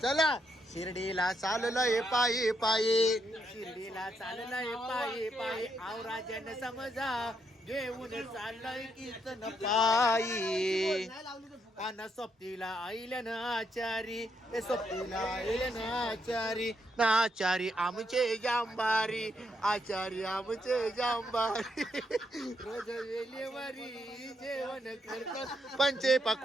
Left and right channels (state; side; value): normal; both; correlation 0.78